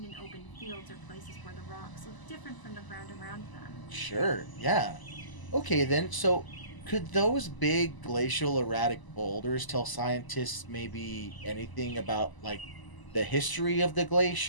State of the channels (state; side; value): late; right; 1.0 ms